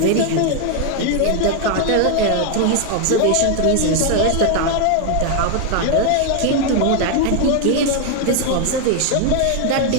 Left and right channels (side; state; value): both; different; correlation 0.01